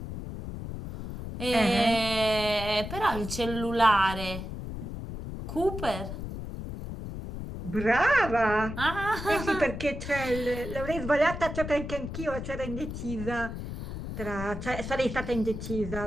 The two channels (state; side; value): noise; left; rumble, 7 dB below the sound